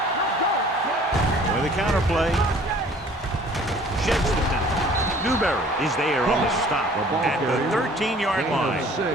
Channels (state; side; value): normal; both; correlation 0.52